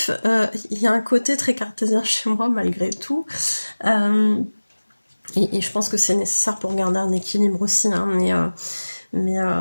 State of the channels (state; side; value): inverted; both; correlation -1.00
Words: il y a un côté très cartésien chez moi malgré tout. Et je pense que c'est nécessaire pour garder un équilibre aussi. Hein, mais